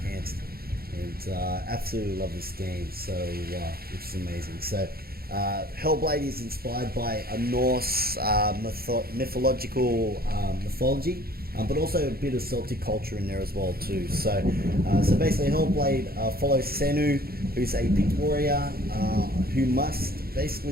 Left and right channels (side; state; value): left; late; 0.44 ms